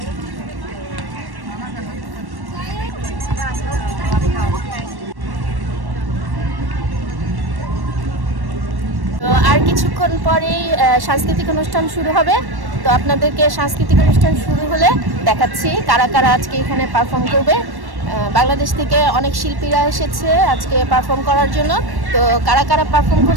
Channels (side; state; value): left; late; 1.1 ms